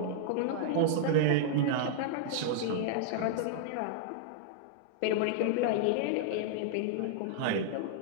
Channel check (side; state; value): both; different; correlation -0.02